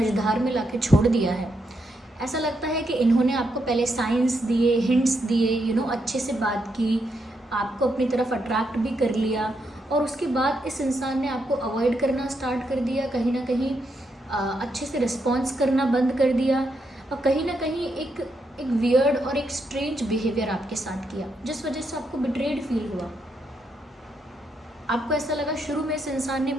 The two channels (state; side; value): normal; both; correlation 0.80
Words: में लाके छोड़ दिया है। ऐसा लगता है कि इन्होंने आपको पहले साइंस दिए, हिंट्स दिए, अच्छे से बात की, आपको अपनी तरफ अट्रैक्ट भी कर लिया, और उसके बाद इस इंसान ने आपको अवॉइड करना स्टार्ट कर दिया। कहीं ना कहीं अच्छे से रिस्पॉन्स करना बंद कर दिया, और कहीं ना कहीं एक वियर्ड और एक स्ट्रेंज बिहेवियर आपके साथ किया, जिस वजह से आपको बिट्रेड फील हुआ। आपको ऐसा लगा शुरू में इस इंसान ने